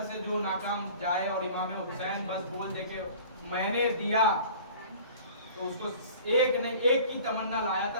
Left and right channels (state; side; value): inverted; both; correlation -0.45